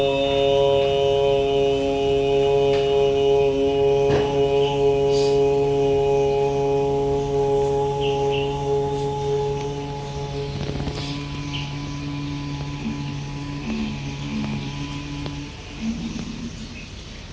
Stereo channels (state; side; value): identical; both; correlation 1.00